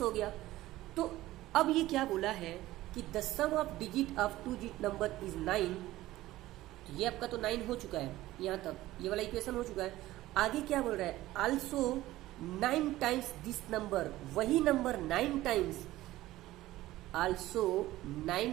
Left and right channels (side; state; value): left; quieter; 16.3 dB